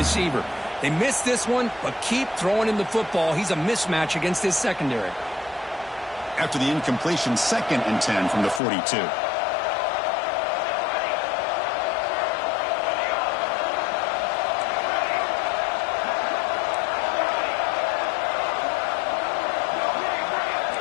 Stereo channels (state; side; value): drops out; right; at 8.6 s